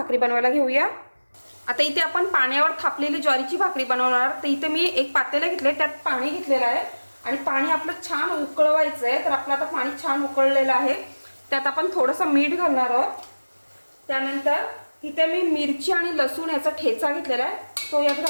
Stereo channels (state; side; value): inverted; both; correlation -1.00